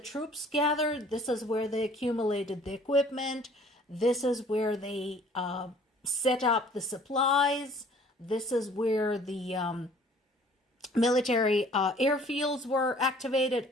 gathered. This is where they accumulated the equipment. This is where they set up the supplies. This is where the military airfields were activated,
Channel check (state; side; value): normal; both; correlation 0.54